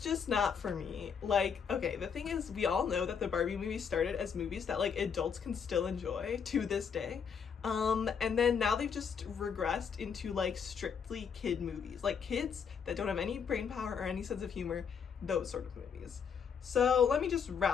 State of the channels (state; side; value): quieter; right; 6.7 dB